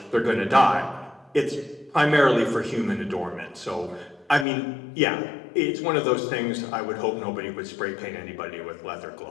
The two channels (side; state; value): right; drops out; at 4.5 s